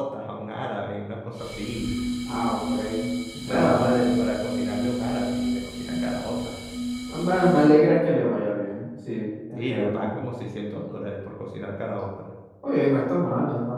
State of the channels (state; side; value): identical; both; correlation 1.00